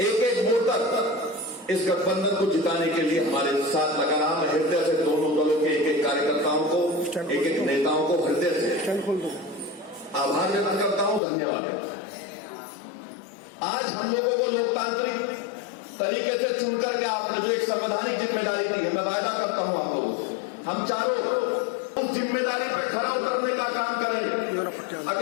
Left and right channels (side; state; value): right; drops out; at 11.2 s